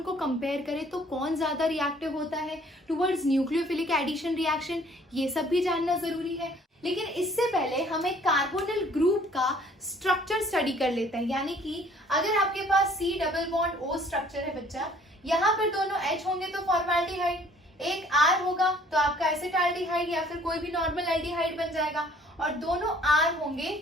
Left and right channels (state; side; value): normal; both; correlation 0.57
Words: को कंपेयर करें तो कौन ज्यादा रिएक्टिव होता है टुवर्ड्स न्यूक्लियोफिलिक एडिशन रिएक्शन, ये सब भी जानना जरूरी है। लेकिन इससे पहले हम एक कार्बोनिल ग्रुप का स्ट्रक्चर स्टडी कर लेते हैं। यानी कि अगर आपके पास C double bond O structure है बच्चा, यहाँ पर दोनों H होंगे तो फॉर्मेल्डिहाइड, एक R होगा तो आपका एसिटाल्डिहाइड या फिर कोई भी नॉर्मल एल्डिहाइड बन जाएगा, और दोनों R होंगे